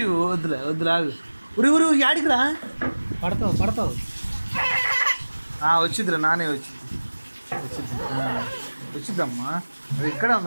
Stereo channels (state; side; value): inverted; both; correlation -1.00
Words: వద్దులే వద్దులే ఆగు ఉరి ఉరి యాడికి రా పడతావు పడతావు వచ్చిద్దిరా నానే వచ్చిద్దమ్మా అది ఇక్కడే